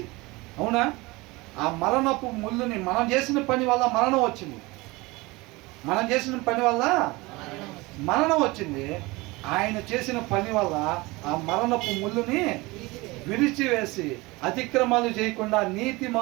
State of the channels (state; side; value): quieter; left; 22.8 dB